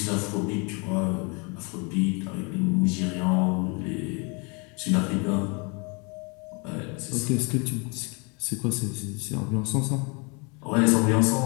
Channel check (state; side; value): quieter; right; 32.0 dB